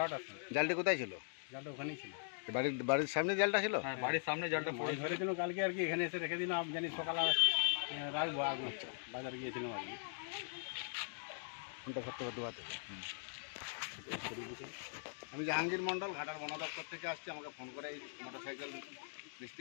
সময়। জালটি কোথায় ছিল? জালটা ওখানেই ছিল। বাড়ির সামনে জালটা ছিল? হ্যাঁ, বাড়ির সামনে জালটা পড়ে ধরেছিল কালকে আর কি, এখানে এসে রেখে দিলাম। আমি জানি সকালে রাখবো। আচ্ছা, বাজারে গিয়েছিলাম আর কি। ফোনটা করতে করতে আমি জাহাঙ্গীর মণ্ডল, ঘাটাল বন দপ্তর থেকে আসছি। আমাকে ফোন করে এই মোটরসাইকেল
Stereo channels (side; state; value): right; silent; digital silence